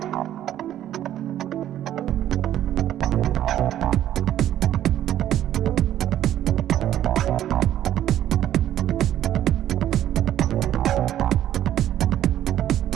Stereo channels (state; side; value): quieter; left; 11.9 dB